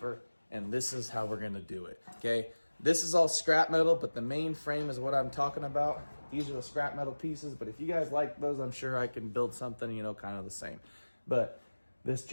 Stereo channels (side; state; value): both; inverted; correlation -1.00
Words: and this is how we're gonna do it, okay? This is all scrap metal, but the main frame is what I'm talking about. These are the scrap metal pieces, but if you guys like those, I'm sure I can build something, you know, kind of the same. But this